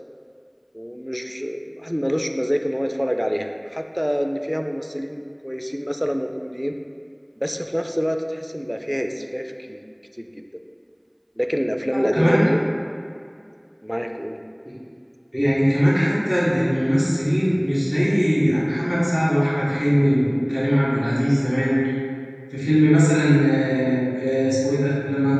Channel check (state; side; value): identical; both; correlation 1.00